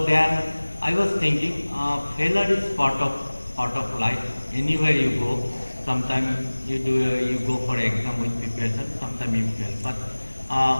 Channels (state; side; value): inverted; both; correlation -1.00